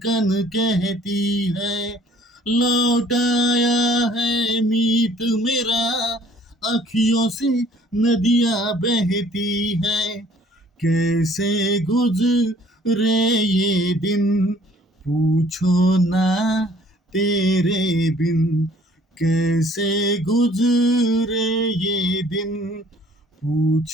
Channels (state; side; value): normal; both; correlation 0.57